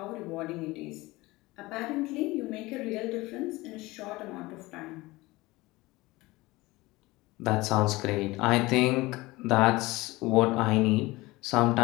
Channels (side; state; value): right; quieter; 20.9 dB